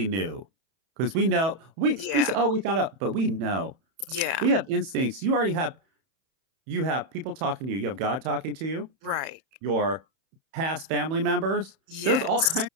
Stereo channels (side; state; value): left; late; 30 ms